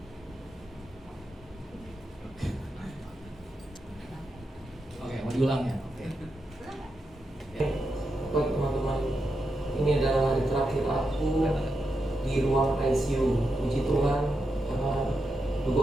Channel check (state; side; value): normal; both; correlation 0.86